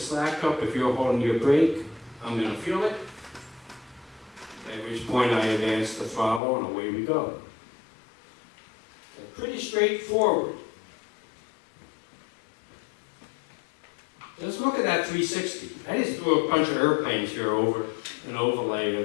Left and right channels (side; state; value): right; drops out; at 6.4 s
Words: up. If you're holding your brake, I'm going to feel it. At which point I advance the throttle and away we go. So pretty straightforward. Let's look at that 360. I just threw a bunch of airplanes here over an overlay